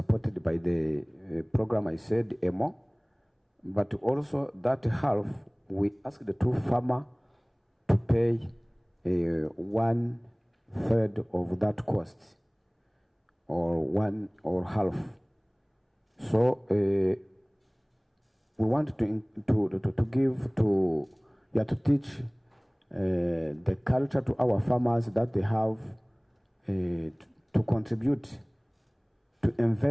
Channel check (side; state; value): both; identical; correlation 1.00